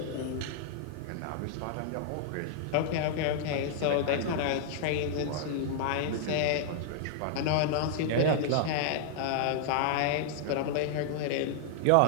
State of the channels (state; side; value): different; both; correlation -0.01